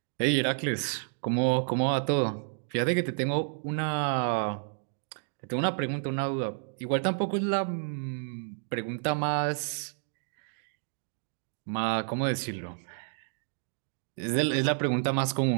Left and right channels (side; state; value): left; silent; digital silence